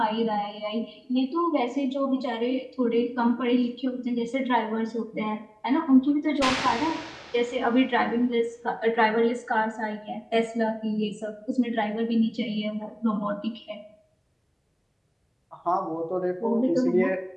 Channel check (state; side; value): identical; both; correlation 1.00